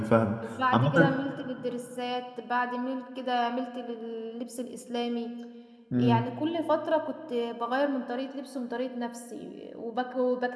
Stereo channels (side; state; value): both; identical; correlation 1.00